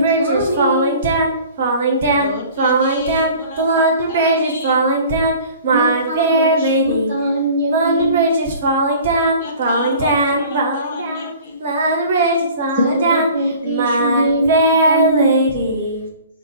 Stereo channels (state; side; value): inverted; both; correlation -0.46